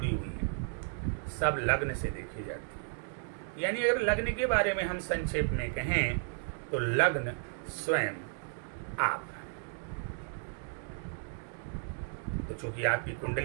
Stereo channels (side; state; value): left; silent; 55 dB below the other